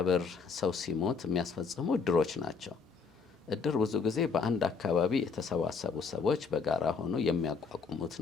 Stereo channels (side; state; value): right; quieter; 5.2 dB